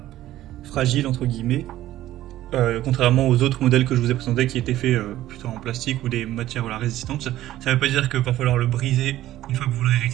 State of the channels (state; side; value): quieter; left; 14.2 dB